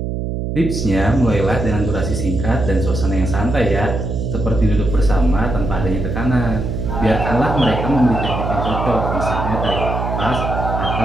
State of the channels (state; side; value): noise; right; hum, 3 dB below the sound